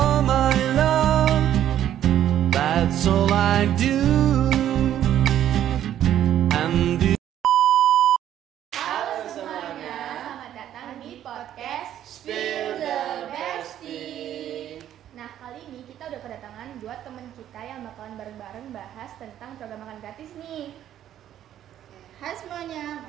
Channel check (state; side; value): quieter; left; 11.3 dB